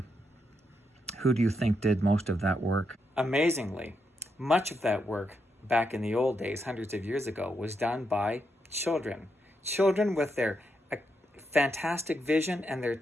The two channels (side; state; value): both; normal; correlation 0.82